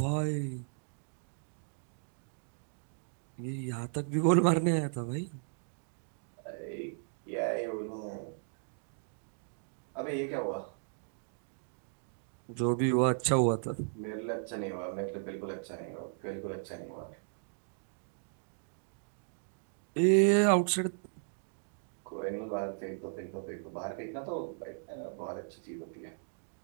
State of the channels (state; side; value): silent; left; digital silence